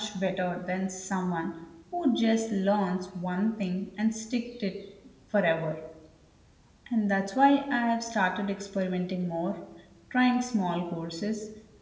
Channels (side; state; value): both; identical; correlation 1.00